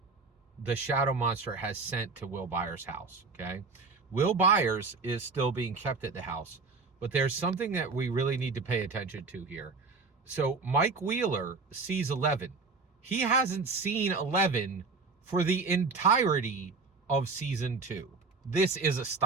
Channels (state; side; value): quieter; left; 4.3 dB